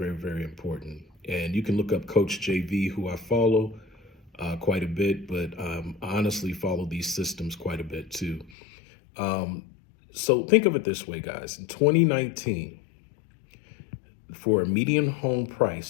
very important. And you can look up Coach JV, who I follow quite a bit, but I honestly follow these systems quite a bit too. Um, so think of it this way, guys. In 2019, for a median home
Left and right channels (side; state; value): right; drops out; at 8.5 s